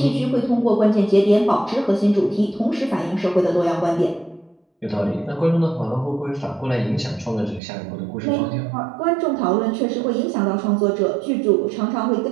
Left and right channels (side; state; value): left; drops out; at 7.6 s